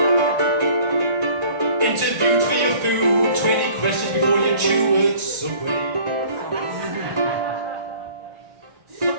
Interviewed for your food, 20 questions before you chew at Subway.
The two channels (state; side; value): late; left; 1.4 ms